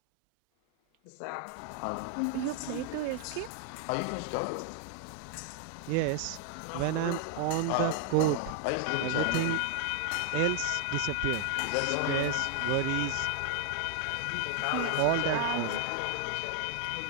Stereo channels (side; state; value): both; different; correlation 0.00